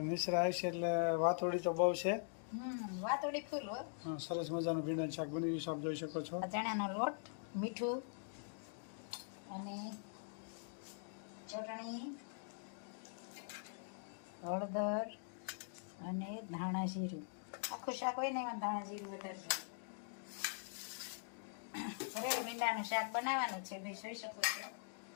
મિશ્રા આવશે એટલે વાતોડી તો બહુ છે. વાતોડી ફૂલ હોય. સરસ મજાનું ભીંડાનું શાક બની ગયું છે, આપ જોઈ શકો છો. ચણાનો લોટ, મીઠું અને ચટણી, હળદર અને ધાણા જીરું. આખું શાક હોય ને એમાં ધાણા જીરું વધારે છે. ભરેલ ભીંડાનું શાક બનાવવાનું છે ભાઈ, જોઈ શકો છો.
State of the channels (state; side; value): silent; right; digital silence